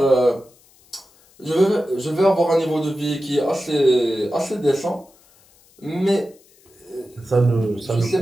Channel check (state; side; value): noise; left; hiss, 30 dB below the sound